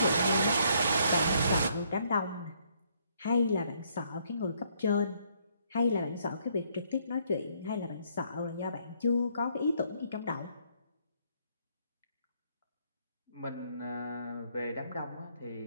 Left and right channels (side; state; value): both; inverted; correlation -0.69